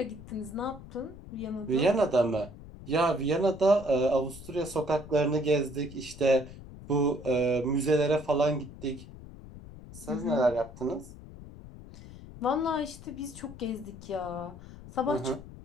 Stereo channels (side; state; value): left; noise; rumble, 16 dB below the sound